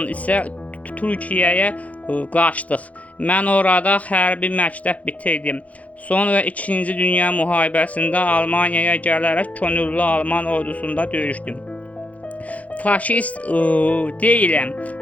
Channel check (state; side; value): late; right; 0.068 ms